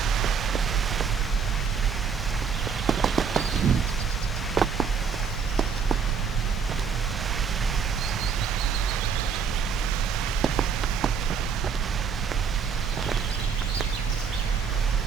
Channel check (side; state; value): left; quieter; 6.3 dB